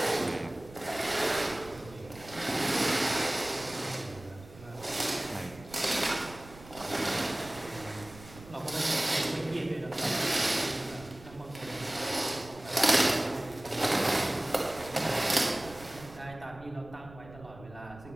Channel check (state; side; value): noise; right; rumble, 19 dB below the sound